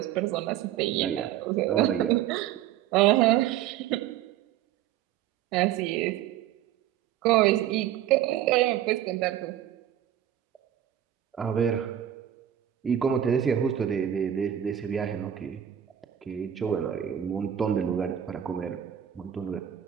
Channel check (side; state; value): left; quieter; 11.0 dB